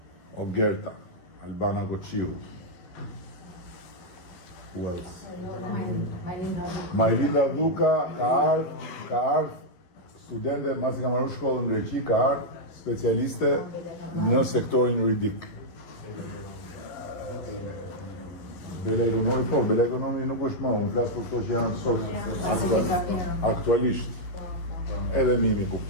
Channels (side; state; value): right; late; 11 ms